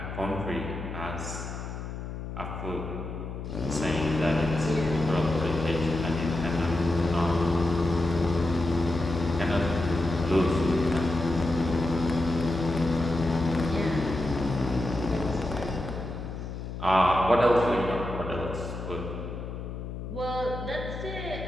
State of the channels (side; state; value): left; noise; hum, 7 dB below the sound